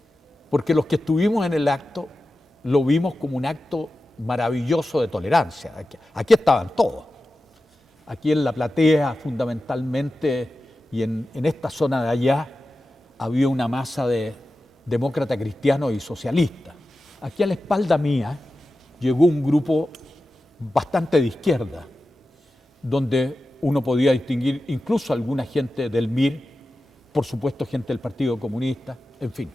porque los que estuvimos en el acto lo vimos como un acto maravilloso de tolerancia. Aquí estaban todos. Aquí en la platea, fundamentalmente, y en esta zona de allá, había una masa de demócratas cristianos y socialistas. Aquí a la espalda mía llegó un grupo bastante de izquierda, donde uno podía distinguir incluso alguna gente del MIR, por supuesto gente del Partido Comunista, en fin,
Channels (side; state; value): both; normal; correlation 0.93